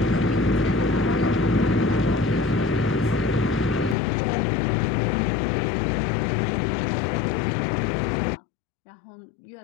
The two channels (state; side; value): drops out; right; at 4.0 s